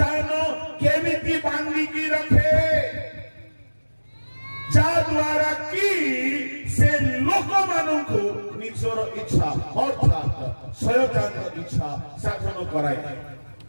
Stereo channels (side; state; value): both; inverted; correlation -1.00